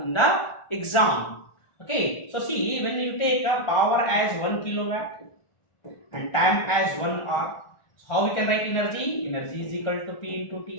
the exam. Okay, so see, when you take a power as 1 kilowatt and time as 1 hour, so how we can write energy? Energy is equal to P into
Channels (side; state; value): right; late; 1.4 ms